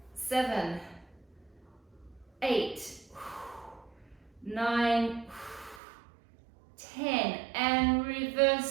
7, 8, 9, 10, and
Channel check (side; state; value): left; drops out; at 5.8 s